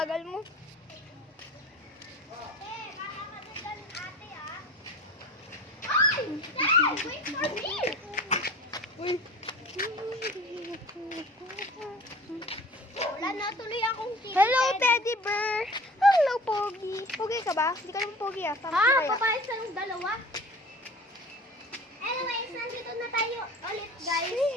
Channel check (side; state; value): both; normal; correlation 0.41